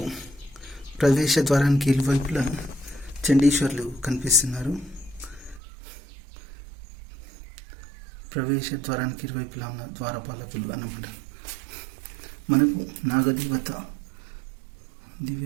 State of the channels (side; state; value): left; drops out; at 5.6 s